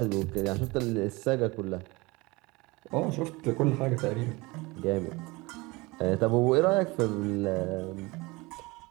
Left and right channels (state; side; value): quieter; left; 23.6 dB